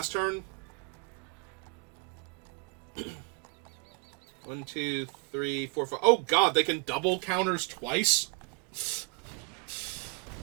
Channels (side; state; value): left; quieter; 30.6 dB